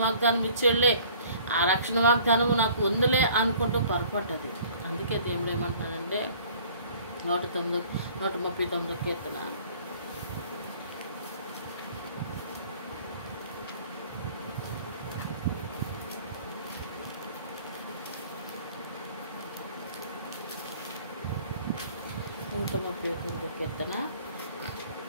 వాగ్దానం ఇచ్చేళ్ళే, ఆ రక్షణ వాగ్దానము నాకు ఉందిలే అనుకుంటూ పొరపడ్డది. అందుకే దేవుడు ఏమంటున్నానంటే 139 కీర్తన 139 కీర్తన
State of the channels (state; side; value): inverted; both; correlation -0.52